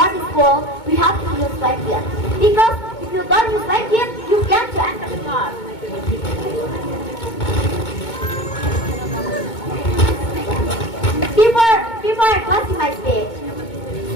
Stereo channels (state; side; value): late; right; 2.2 ms